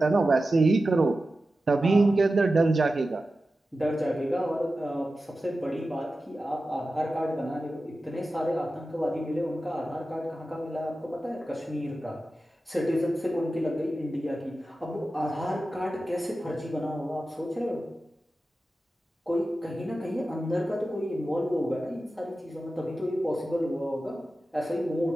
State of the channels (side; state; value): both; normal; correlation 0.93